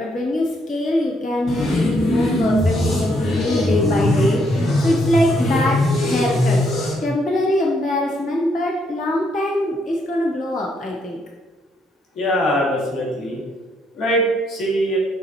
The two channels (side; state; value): both; normal; correlation 0.74